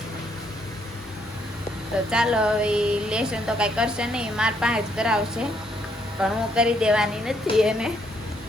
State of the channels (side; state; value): both; normal; correlation 0.72